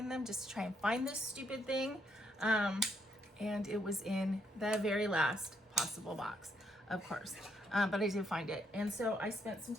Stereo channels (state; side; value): normal; both; correlation 0.74